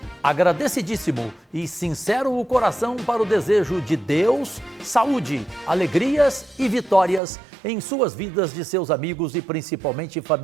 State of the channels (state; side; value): drops out; left; at 7.2 s